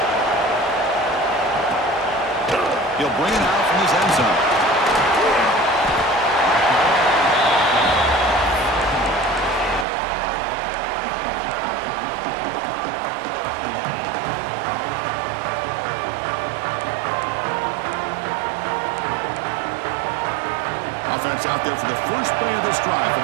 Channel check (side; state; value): left; drops out; at 9.9 s